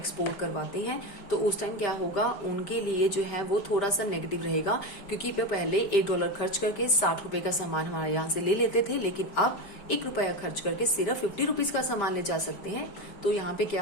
करवाते हैं, तो उस टाइम क्या होगा, उनके लिए जो है वो थोड़ा सा नेगेटिव रहेगा, क्योंकि वे पहले $1 खर्च करके 60 रुपए का सामान हमारे यहाँ से ले लेते थे, लेकिन अब ₹1 खर्च करके सिर्फ 50 रुपीज का सामान ले जा सकते हैं, तो यहाँ पे क्या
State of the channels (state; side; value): late; right; 5.1 ms